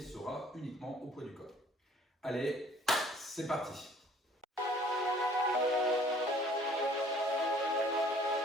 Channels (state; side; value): normal; both; correlation 0.55